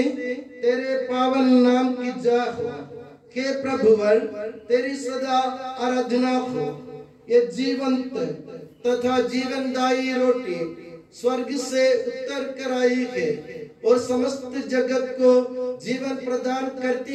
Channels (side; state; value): both; identical; correlation 1.00